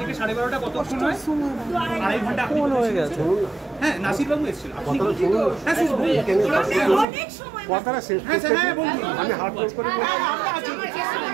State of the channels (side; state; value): left; drops out; at 7.1 s